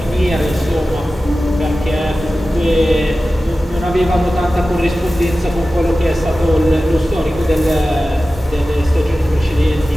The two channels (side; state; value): both; normal; correlation 0.95